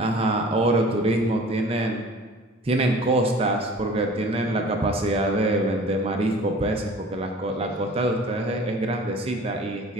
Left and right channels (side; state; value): both; normal; correlation 0.45